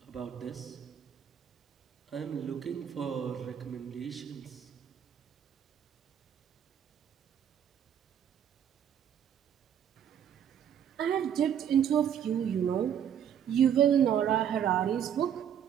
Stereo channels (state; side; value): quieter; left; 9.1 dB